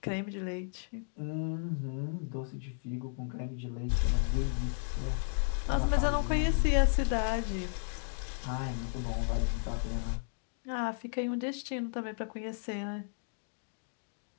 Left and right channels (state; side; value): silent; right; digital silence